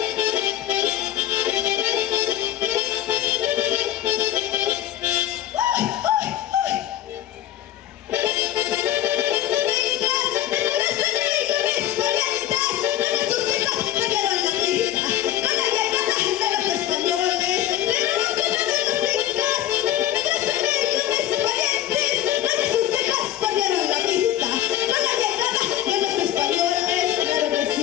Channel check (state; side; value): quieter; right; 12.6 dB